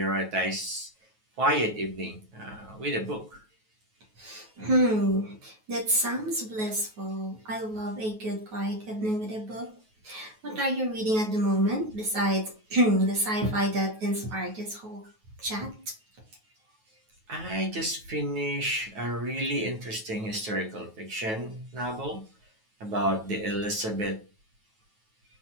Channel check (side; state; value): left; late; 9.3 ms